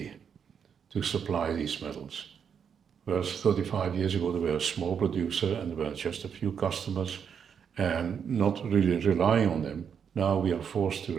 to supply these metals. Whereas 35 years ago, they were a small producer and there were just a few customers and not really relying on them. Now we are forced to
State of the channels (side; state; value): left; quieter; 7.3 dB